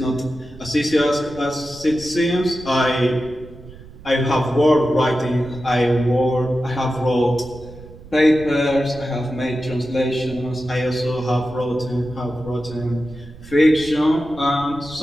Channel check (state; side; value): noise; right; rumble, 18 dB below the sound